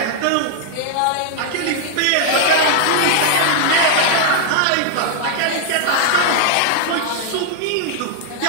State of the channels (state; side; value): different; both; correlation 0.00